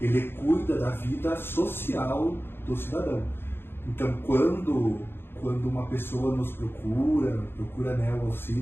ele cuida da vida social do cidadão. Então, quando uma pessoa nos procura, né, o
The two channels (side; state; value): right; late; 0.11 ms